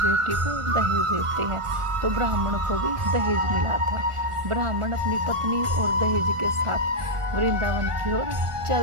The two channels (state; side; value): late; left; 1.5 ms